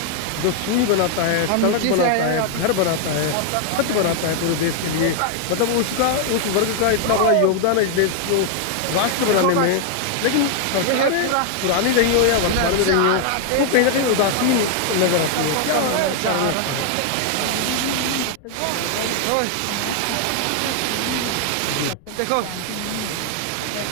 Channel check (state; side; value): different; both; correlation 0.00